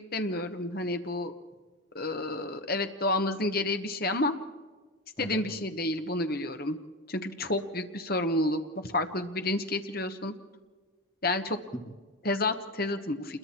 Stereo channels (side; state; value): both; normal; correlation 0.21